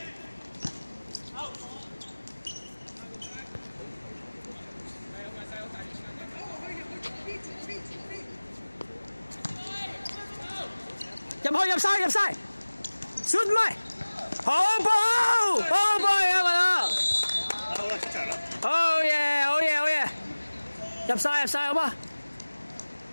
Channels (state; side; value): inverted; both; correlation -1.00